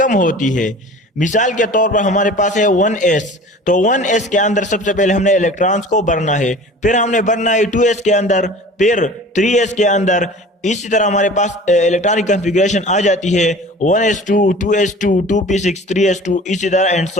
होती है। मिसाल के तौर पर हमारे पास है 1s, तो 1s के अंदर सबसे पहले हमने इलेक्ट्रॉन्स को भरना है, फिर हमने भरना है 2s के अंदर, फिर 3s के अंदर। इसी तरह हमारे पास इलेक्ट्रॉनिक कॉन्फ़िगरेशन आ जाती है 1s2, 2s2, 2p6, 3s2, इसी तरह एंड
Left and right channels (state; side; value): normal; both; correlation 0.42